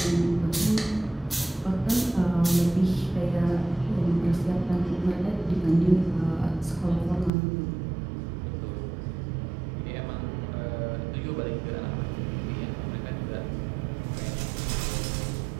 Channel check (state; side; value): drops out; left; at 7.3 s